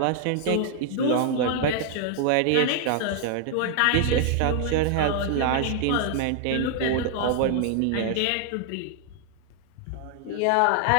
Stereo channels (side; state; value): both; different; correlation 0.00